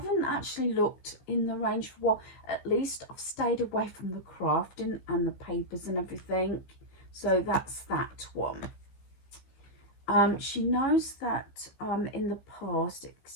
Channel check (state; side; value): late; right; 16 ms